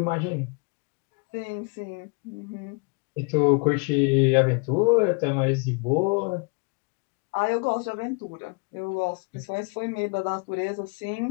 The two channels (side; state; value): right; quieter; 32.3 dB